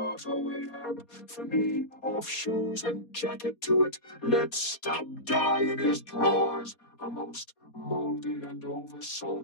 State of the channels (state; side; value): late; right; 4.2 ms